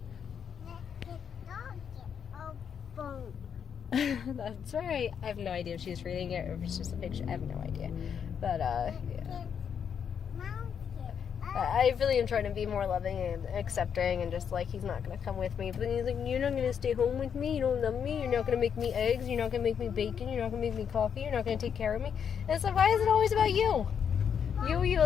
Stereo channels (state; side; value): quieter; right; 7.6 dB